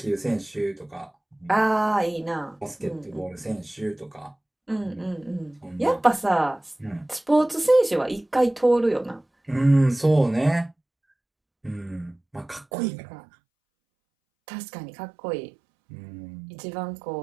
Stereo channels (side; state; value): left; drops out; at 12.7 s